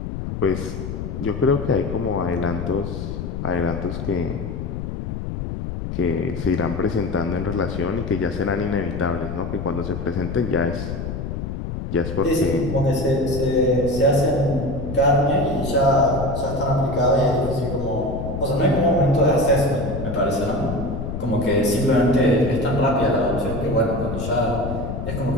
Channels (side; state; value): left; noise; rumble, 5 dB below the sound